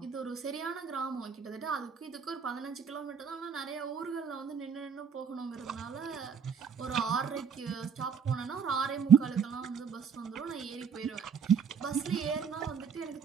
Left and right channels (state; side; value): quieter; left; 6.7 dB